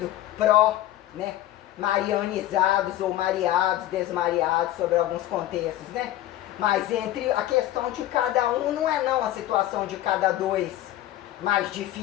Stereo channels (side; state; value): right; quieter; 14.1 dB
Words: né, marianizados ou mareados, desmareados sobre alguns contextos, né? Mas entre a questão de cada um não é não a situação de cada dois mais